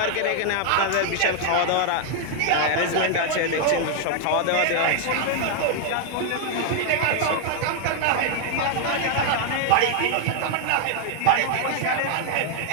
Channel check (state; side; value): different; both; correlation 0.00